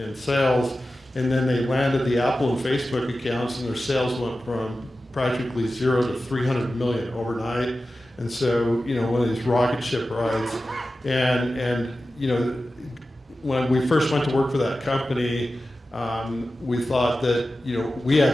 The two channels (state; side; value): normal; both; correlation 0.94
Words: sales, and then they landed the Apple and Facebook accounts, and their sales went from practically 0 to 300 million overnight. And so one of these rocket ship rides, and when we first went to work for that company, we thought that we